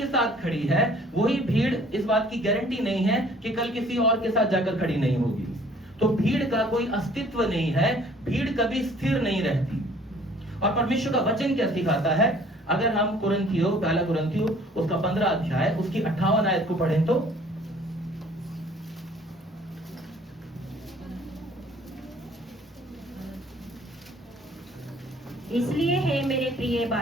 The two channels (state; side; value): normal; both; correlation 0.55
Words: साथ खड़ी है, वही भीड़ इस बात की गारंटी नहीं है कि कल किसी और के साथ जाकर खड़ी नहीं होगी। तो भीड़ का कोई अस्तित्व नहीं है, भीड़ कभी स्थिर नहीं रहती। और परमेश्वर का वचन क्या सिखाता है, अगर हम कुरिन्थियों, पहला कुरिन्थियों उसका 15 अध्याय उसकी 58 आयत को पढ़ें तो, इसलिए हे मेरे प्रिय